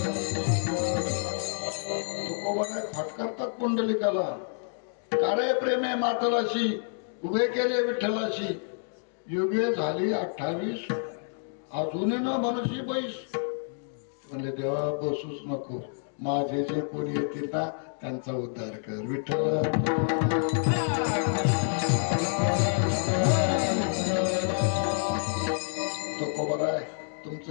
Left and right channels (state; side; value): silent; right; digital silence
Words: फटकारतात पुंडलिकाला. काळे प्रेम आहे मातलाशी, उभे केले विठ्ठलाशी. युगे झाली 28, अजून न मनुष्य बैस. म्हणजे देवा बसूच नको, माझे जे कोणी येतील ना त्यांचा उद्धार कर. विठ्ठल तो खबर आहे.